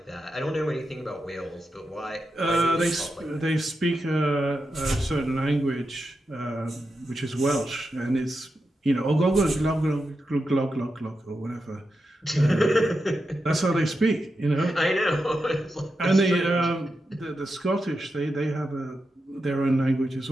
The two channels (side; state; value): both; normal; correlation 0.88